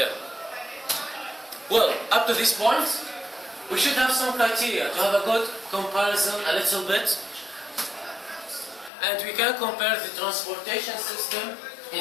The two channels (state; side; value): drops out; right; at 8.9 s